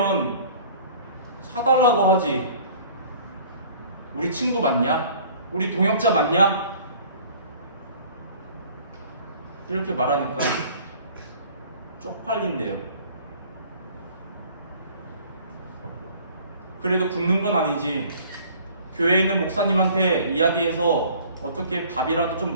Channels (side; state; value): both; inverted; correlation -0.51